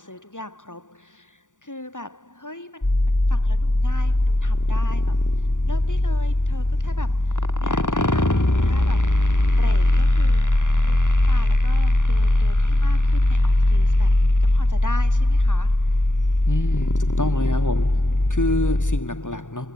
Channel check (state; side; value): late; right; 0.86 ms